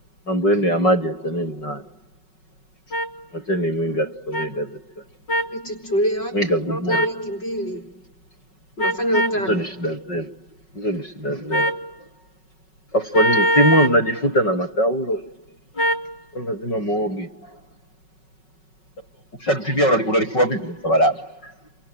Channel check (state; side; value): late; right; 5.4 ms